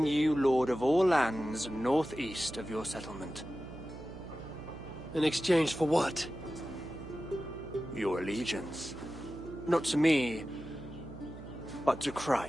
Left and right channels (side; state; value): right; noise; hum, 13 dB below the sound